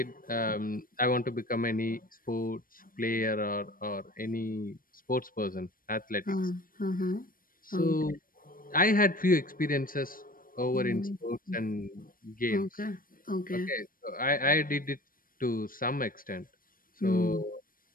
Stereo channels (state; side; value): late; right; 0.41 ms